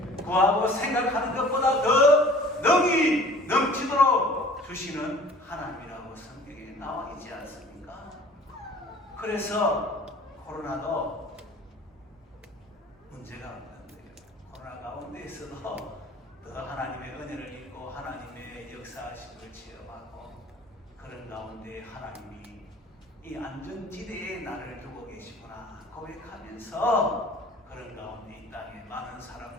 구하고 생각하는 것보다 더 능히 넘치도록 주시는 하나님이라고 성경에 나와 있지 않습니까? 그래서 코로나도 문제가 없는 거예요. 코로나 가운데에서도 더 하나님의 은혜를 입고 하나님의 역사하심을 체험하고 그런 가운데 하나님이 이 안전지대에 나를 두고 계시구나 고백하면서 그런 가운데 이 땅에 많은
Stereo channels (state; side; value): normal; both; correlation 0.48